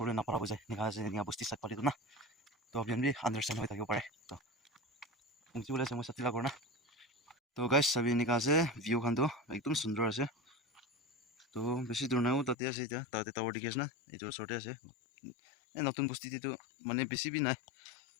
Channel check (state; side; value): drops out; right; at 12.6 s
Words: নাপাৰা হৈ যায় নিকা আছে নিকা বস্তি চাই পাতিটো না তো আপুনি বি আণ্ডাৰষ্টেণ্ড হৈ থাকিব পাৰে তো পুংচি ওলাইছে মই চাতি লাগৰ না তো গাইছ চাবি এনেকা আছে ভিউ খানটো একদম সুন্দৰ আছে তো বেছি দূৰ নাইও তাতে আছে এতিয়া তাতে টাৱাৰ দেখি আছে না এইটোৰ ওচৰতে আছে এই নতুন বস্তিটো মানে বেছি বি নাই